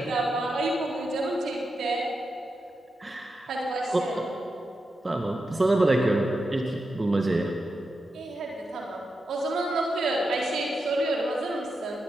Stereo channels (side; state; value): both; normal; correlation 0.88